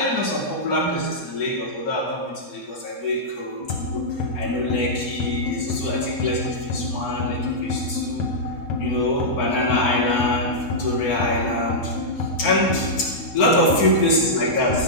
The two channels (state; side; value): late; right; 4.2 ms